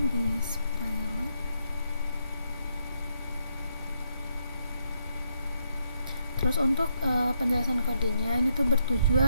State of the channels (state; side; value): inverted; both; correlation -0.77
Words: di spell. Terus untuk penjelasan kodenya ini tuh